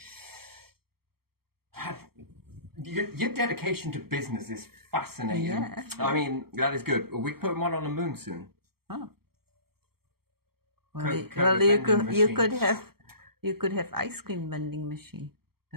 your dedication to business is fascinating. Yeah. I mean, that is good. We're putting one on the moon soon. Oh. Coca-Cola Well, vending you could have ice cream vending machine.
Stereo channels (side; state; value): left; late; 0.95 ms